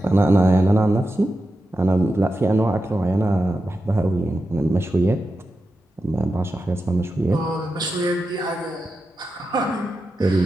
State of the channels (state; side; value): normal; both; correlation 0.90